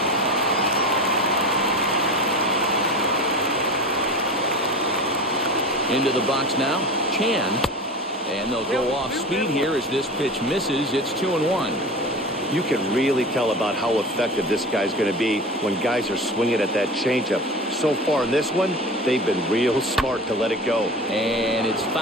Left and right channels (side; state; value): both; normal; correlation 0.32